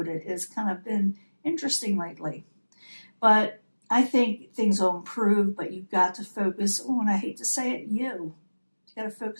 has kind of been interesting lately. But I think things will improve, but you've got to focus on, I hate to say it, you. You got to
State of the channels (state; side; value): inverted; both; correlation -1.00